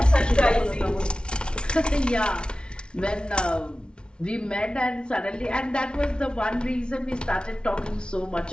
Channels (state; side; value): late; right; 0.056 ms